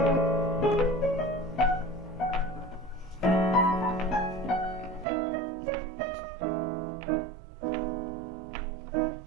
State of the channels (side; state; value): left; drops out; at 5.1 s